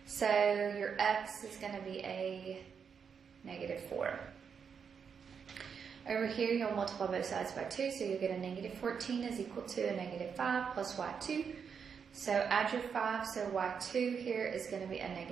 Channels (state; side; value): quieter; left; 6.6 dB